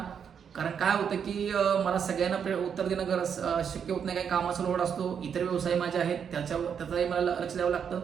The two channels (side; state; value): left; quieter; 7.5 dB